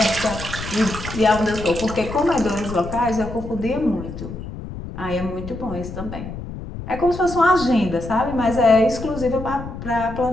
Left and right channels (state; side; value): noise; left; rumble, 10 dB below the sound